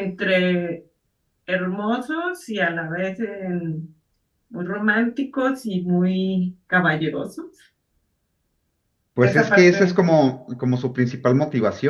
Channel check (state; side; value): identical; both; correlation 1.00